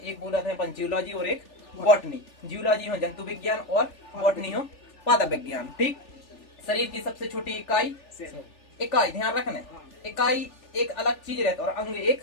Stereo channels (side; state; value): right; late; 3.4 ms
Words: बोला था अपन जियोलॉजी और एक बॉटनी। जियोलॉजी हो जंतु विज्ञान और बॉटनी हो पादप विज्ञान। ठीक, शरीर की सबसे छोटी इकाई, ध्यान रखना, इकाई एक अलग चीज रहता और अंग एक